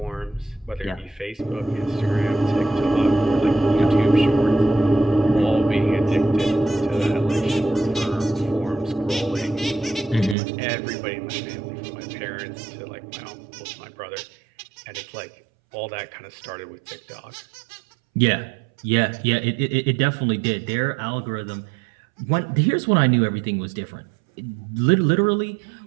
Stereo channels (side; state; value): left; drops out; at 10.4 s